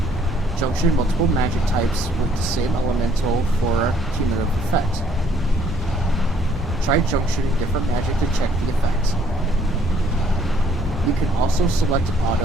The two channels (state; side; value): normal; both; correlation 0.64